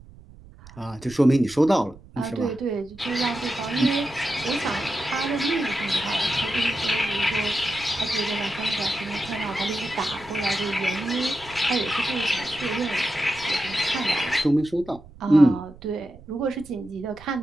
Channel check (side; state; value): right; noise; rumble, 21 dB below the sound